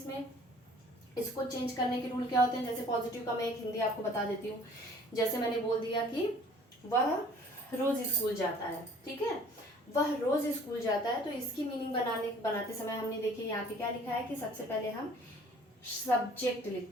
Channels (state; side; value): normal; both; correlation 0.52